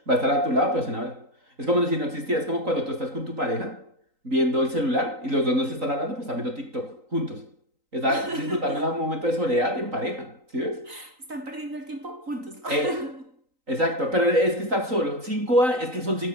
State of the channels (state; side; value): late; left; 3.9 ms